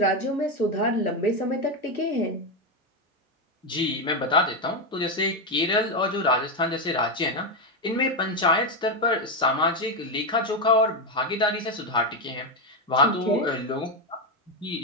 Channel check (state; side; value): normal; both; correlation 0.08